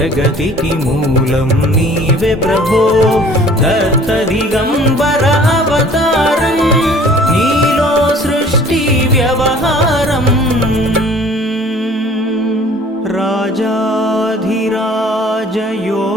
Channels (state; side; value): normal; both; correlation 0.51